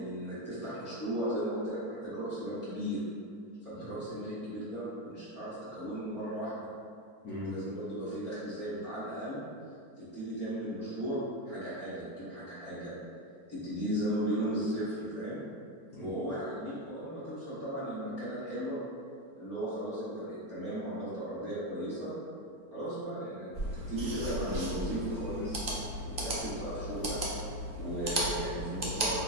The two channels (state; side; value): late; right; 4.4 ms